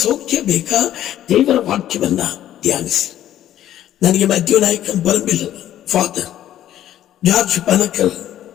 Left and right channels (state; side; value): quieter; right; 12.0 dB